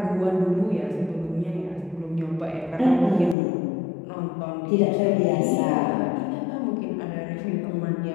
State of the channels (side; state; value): right; drops out; at 3.4 s